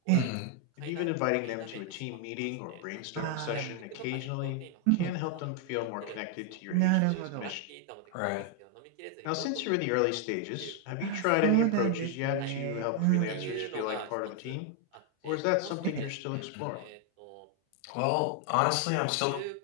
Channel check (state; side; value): different; both; correlation 0.00